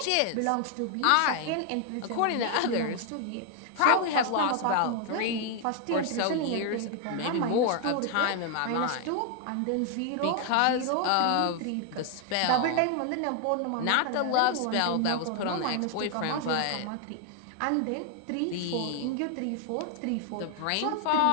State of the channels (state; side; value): different; both; correlation 0.00